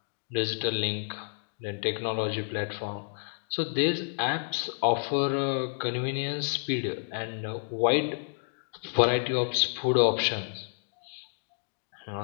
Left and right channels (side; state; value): right; silent; digital silence